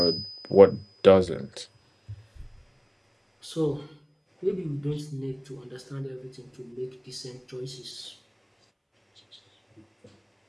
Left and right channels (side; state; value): both; identical; correlation 1.00